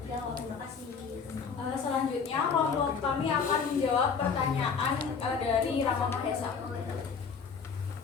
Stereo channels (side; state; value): right; quieter; 5.8 dB